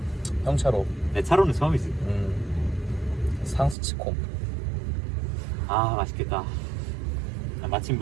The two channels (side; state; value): left; drops out; at 3.8 s